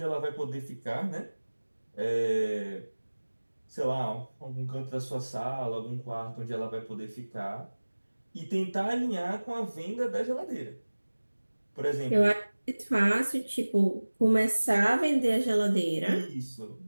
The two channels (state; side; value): inverted; both; correlation -1.00